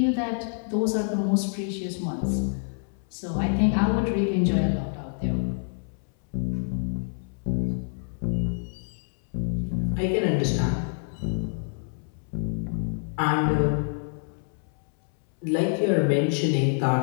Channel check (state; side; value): silent; right; 60 dB below the other